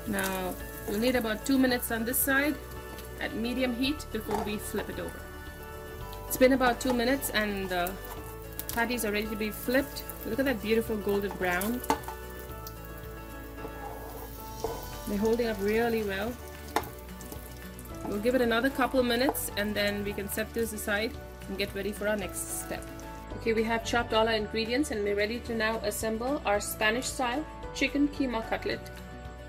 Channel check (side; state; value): both; identical; correlation 1.00